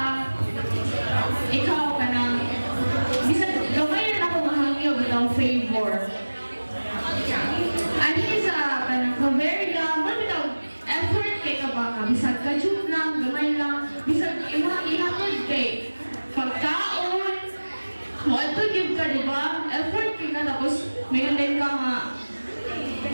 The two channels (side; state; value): both; inverted; correlation -1.00